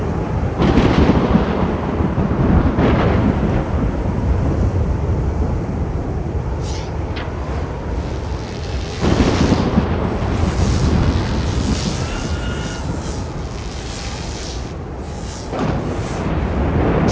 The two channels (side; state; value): both; identical; correlation 1.00